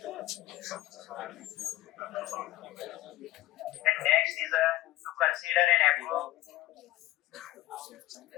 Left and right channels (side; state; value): right; quieter; 15.9 dB